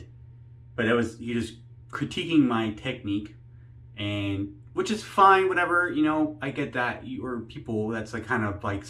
but it was, you just critiquing my technique, and which is fine, whatever, I get that. Or people, that's like kind of like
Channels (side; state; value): both; identical; correlation 1.00